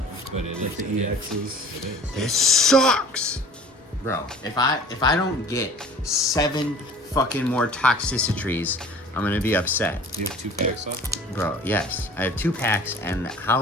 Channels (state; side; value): normal; both; correlation 0.46